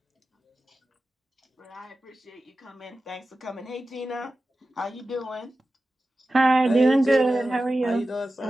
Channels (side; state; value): both; normal; correlation 0.94